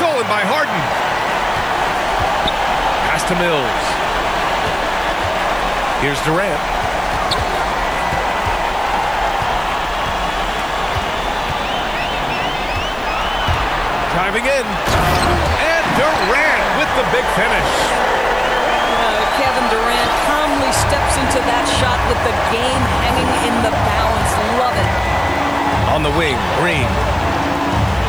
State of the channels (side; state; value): left; noise; hiss, 27 dB below the sound